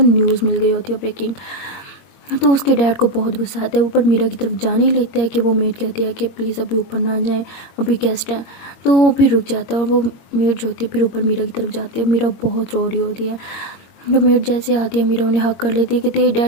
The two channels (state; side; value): late; right; 22 ms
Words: मिल गई होती है ब्रेकिंग। तो उसके डैड को बहुत गुस्सा आता है, ऊपर मीरा की तरफ जाने ही लेता है कि वो मेड कहती है कि प्लीज़ अभी ऊपर ना जाएं, अभी गेस्ट हैं। तो वो फिर रुक जाता है और वो मेड जो होती है फिर ऊपर मीरा की तरफ जाती है। मीरा बहुत रो रही होती है। जब मेड जैसे आती है मीरा उन्हें हक कर लेती है कि तेरे